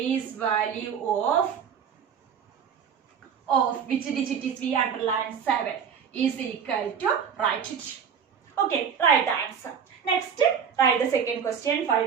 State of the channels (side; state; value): left; quieter; 7.3 dB